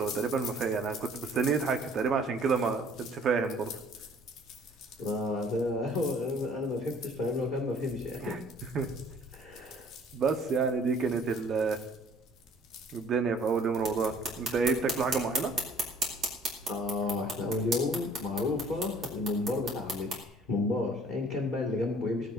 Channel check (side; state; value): both; normal; correlation 0.55